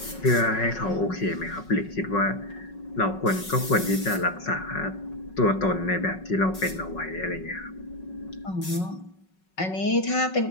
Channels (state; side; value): late; right; 5.4 ms